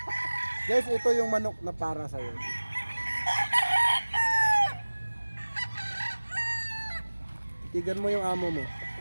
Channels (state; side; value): inverted; both; correlation -1.00